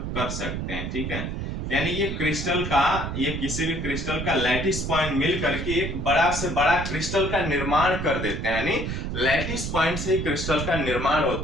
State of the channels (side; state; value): right; noise; rumble, 4 dB below the sound